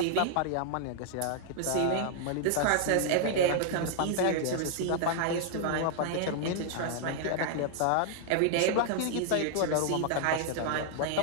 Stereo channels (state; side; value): different; both; correlation 0.00